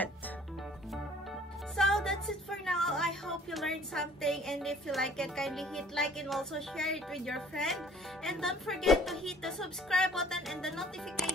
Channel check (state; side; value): normal; both; correlation 0.55